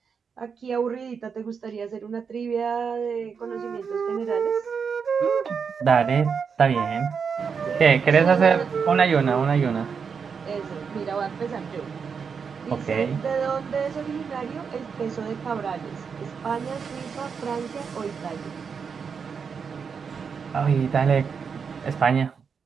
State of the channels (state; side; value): quieter; left; 6.1 dB